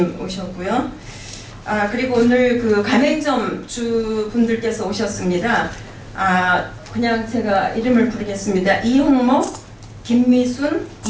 오셨고요. 그리고 오늘 그 가맹점 주분들께서 오셨습니다. 그냥 제가 이름을 부르겠습니다. 이홍목, 김미순,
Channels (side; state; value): both; identical; correlation 1.00